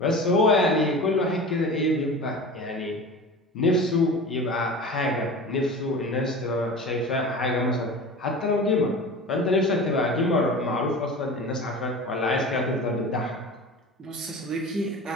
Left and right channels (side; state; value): both; normal; correlation 0.34